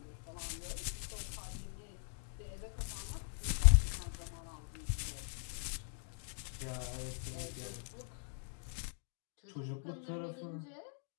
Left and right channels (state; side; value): silent; right; digital silence